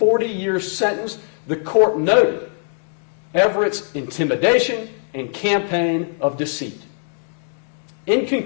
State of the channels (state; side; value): silent; right; digital silence